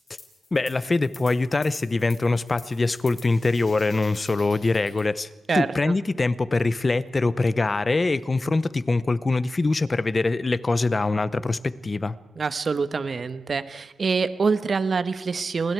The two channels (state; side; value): normal; both; correlation 0.94